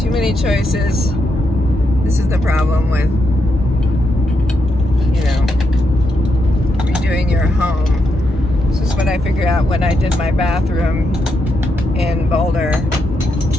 Too many choices. This is the problem with, redoing your home. This is what I figured out when I did my bathroom in Boulder.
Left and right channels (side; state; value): both; normal; correlation 0.82